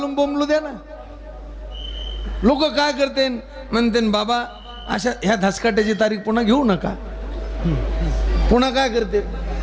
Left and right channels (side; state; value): both; identical; correlation 1.00